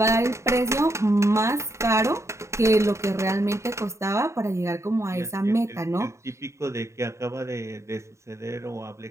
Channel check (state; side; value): late; left; 0.14 ms